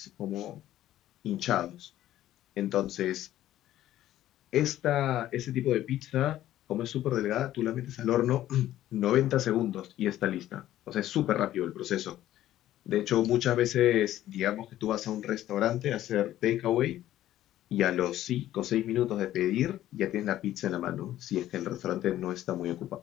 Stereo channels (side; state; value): right; quieter; 13.3 dB